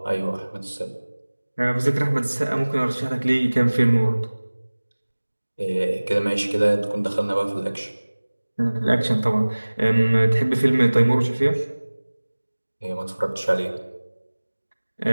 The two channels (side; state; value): both; inverted; correlation -1.00